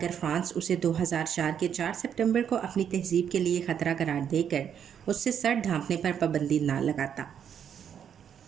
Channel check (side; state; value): left; quieter; 8.5 dB